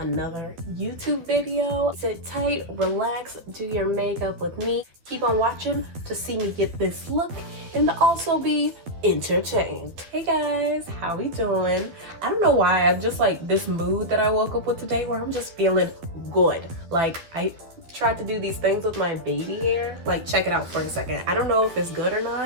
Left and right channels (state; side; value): late; left; 12 ms